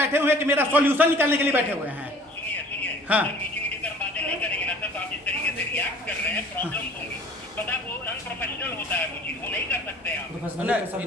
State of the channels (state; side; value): normal; both; correlation 0.50